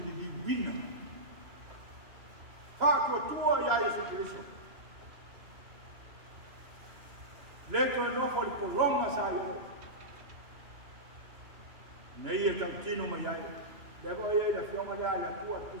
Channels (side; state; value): left; late; 2.9 ms